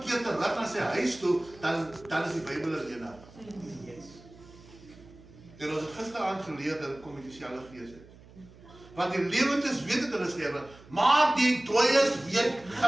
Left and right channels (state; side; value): noise; right; hum, 22 dB below the sound